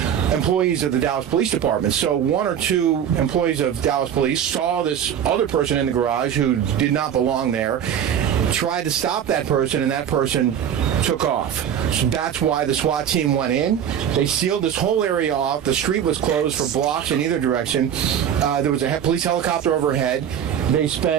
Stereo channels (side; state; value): left; quieter; 9.1 dB